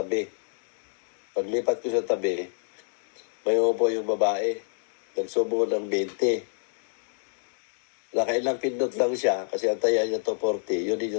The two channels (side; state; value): right; silent; digital silence